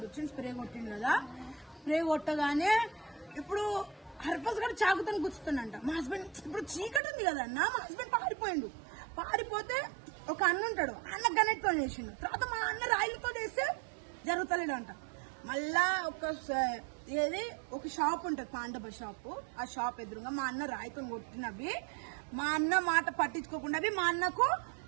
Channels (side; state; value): left; drops out; at 7.0 s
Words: వచ్చిండు, స్ప్రే కొట్టిండు కదా. స్ప్రే కొట్టగానే ఇప్పుడు హర్ఫాస్ కూడా చాకుతో గుచ్చుతుండంట. మా హస్బెండ్ ఇప్పుడు చీకటి ఉంది కదా అన్న, మా హస్బెండ్ పారిపోతే ఒక అన్న ఉంటాడు, అన్న గనెట్తో చేసిండు. తర్వాత మా అన్న రాయిలతో చేస్తే జరుగుతలేడంట. మళ్ళా ఒక షాప్ ఉంటది, పాండవ షాప్. ఆ షాప్ ఎదురుగా మా అన్న రాయితో కొట్టినవి, మా అన్న మాట పట్టించుకోకుండా మా అన్నకు